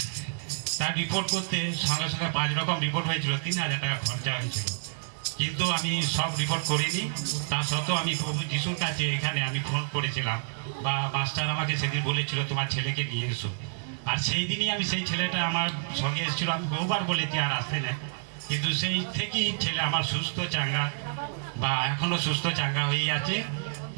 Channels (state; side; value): silent; left; digital silence